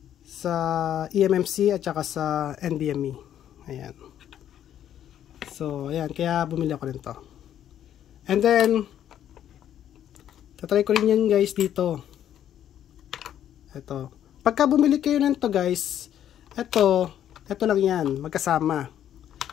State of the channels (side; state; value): right; quieter; 10.6 dB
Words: sa eMMC at saka sa NVMe. Ayan. So, ayan, kaya bumili ako nito. And then tatry ko rin yan guys dito. Ito. Pagka bumili kayo nito guys, ito lang yan, magkasama.